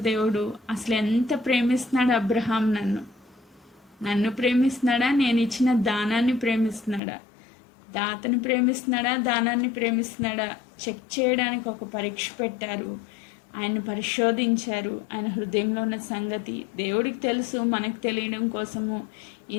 దేవుడు. అసలు ఎంత ప్రేమిస్తున్నాడు అబ్రహాం? నన్ను ప్రేమిస్తున్నాడా? నేను ఇచ్చిన దానాన్ని ప్రేమిస్తున్నాడా? దాతని ప్రేమిస్తున్నాడా? దానాన్ని ప్రేమిస్తున్నాడా? చెక్ చేయడానికి ఒక పరీక్ష పెట్టారు. ఆయన పరిశోధించారు. ఆయన హృదయంలో ఉన్న సంగతి దేవుడికి తెలుసు. మనకు తెలియడం కోసము ఈ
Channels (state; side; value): drops out; right; at 7.0 s